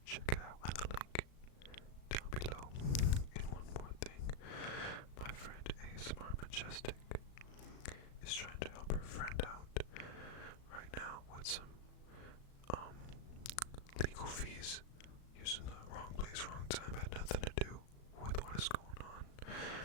check it out on the link down below. And one more thing, my friend ASMR Majestic is trying to help her friend out right now with some legal fees using the wrong place, wrong time. Had nothing to do with what is going on.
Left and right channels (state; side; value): late; right; 36 ms